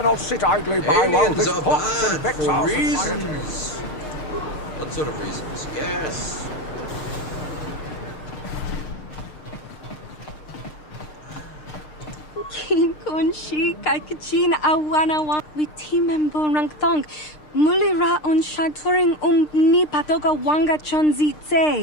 sit idly by while this pots and vexes our society. What sort of reasons? Yes. Kin kun shi kakachin awanawa with team member rangthong. Mulira on shaturing ni patoga wanga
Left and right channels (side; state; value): right; late; 6.6 ms